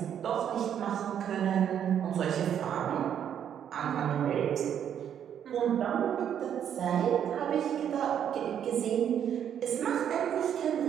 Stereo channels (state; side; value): quieter; left; 9.2 dB